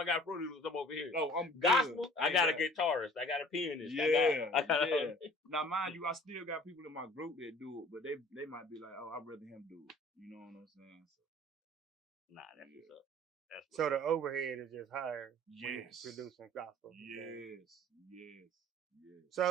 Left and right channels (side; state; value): both; normal; correlation 0.49